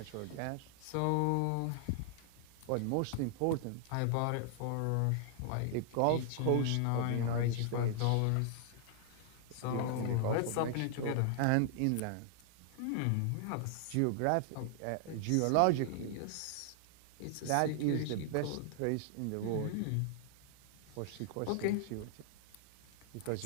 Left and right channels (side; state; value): both; different; correlation -0.01